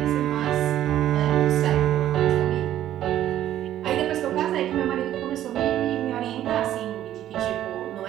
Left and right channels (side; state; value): left; quieter; 12.2 dB